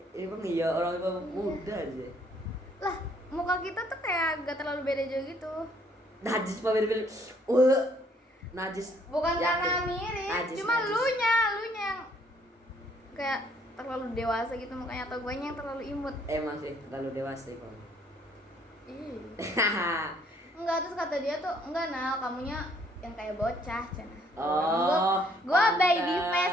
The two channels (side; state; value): both; normal; correlation 0.64